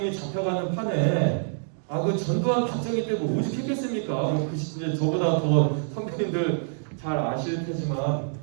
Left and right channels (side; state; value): left; silent; digital silence